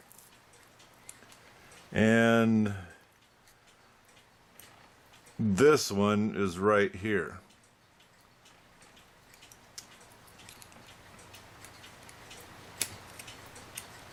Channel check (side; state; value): both; identical; correlation 1.00